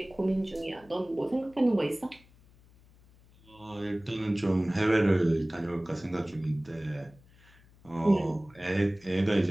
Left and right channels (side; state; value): left; noise; hum, 27 dB below the sound